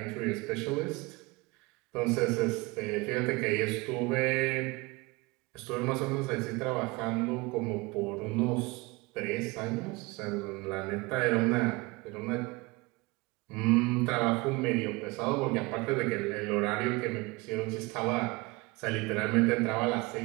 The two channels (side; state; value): left; quieter; 24.2 dB